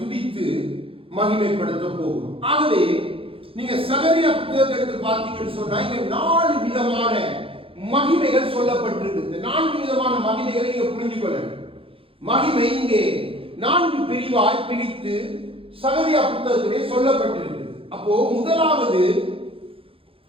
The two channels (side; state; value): left; late; 0.27 ms